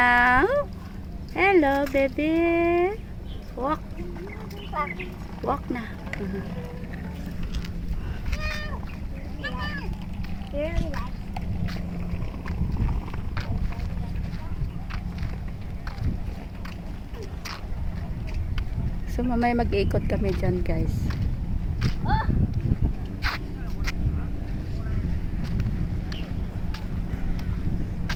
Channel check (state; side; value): identical; both; correlation 1.00